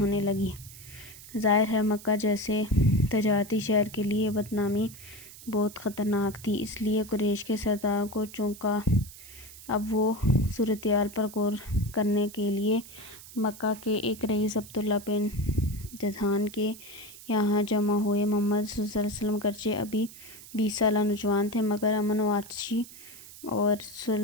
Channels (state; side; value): noise; right; hiss, 17 dB below the sound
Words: لگی۔ ظاہر ہے مکہ جیسے تجارتی شہر کے لیے بدنامی بہت خطرناک تھی، اس لیے قریش کے سرداروں کو چونکا۔ اب وہ صورتحال پر غور کرنے کے لیے مکہ کے ایک رئیس عبداللہ بن جدعان کے یہاں جمع ہوئے۔ محمد صلی اللہ علیہ وسلم گرچہ ابھی 20 سالہ نوجوان تھے، مگر امن و آتشی اور